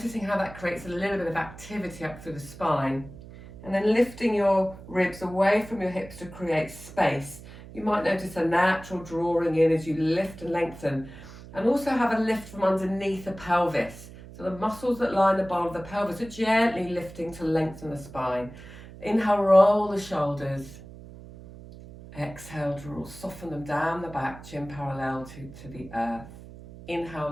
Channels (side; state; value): right; noise; hum, 16 dB below the sound